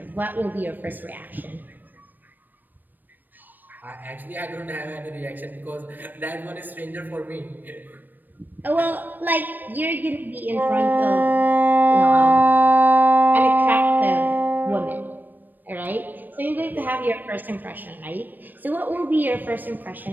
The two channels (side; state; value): left; late; 0.090 ms